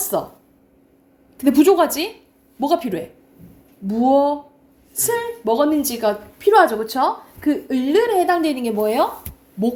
근데 부족하지? 뭐가 필요해? 무엇을 먹었는지가 필요하죠. 그렇죠? 그 을에 해당되는 게 뭐예요?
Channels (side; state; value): both; identical; correlation 1.00